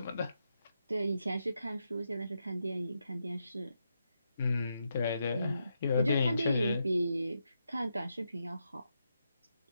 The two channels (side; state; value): both; inverted; correlation -0.83